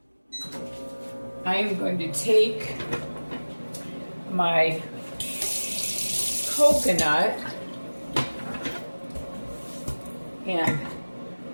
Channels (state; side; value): inverted; both; correlation -1.00